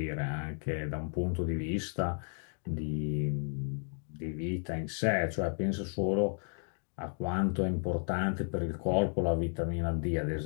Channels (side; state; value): right; silent; 56 dB below the other